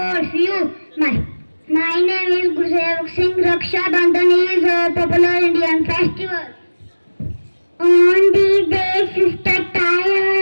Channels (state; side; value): inverted; both; correlation -1.00